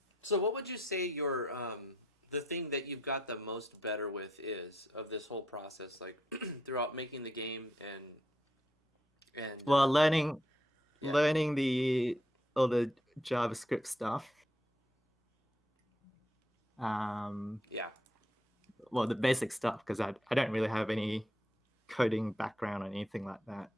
So what would you say your the thing that you've got the most better with is of this whole process, like throughout making the game and Well, learning Yeah. all the JavaScript stuff. yeah. Well, the basic stuff, because I don't really have any coding background or anything like that.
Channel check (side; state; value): both; normal; correlation 0.74